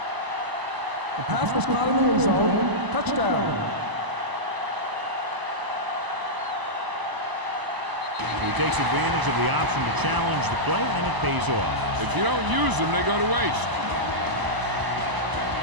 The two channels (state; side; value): late; left; 1.0 ms